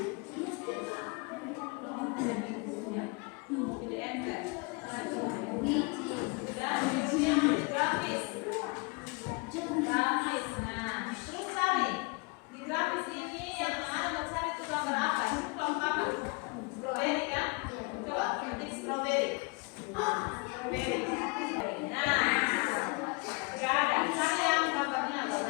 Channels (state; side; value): quieter; right; 30.8 dB